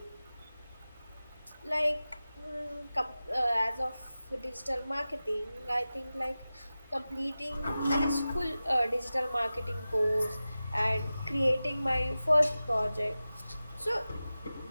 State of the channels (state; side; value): inverted; both; correlation -0.95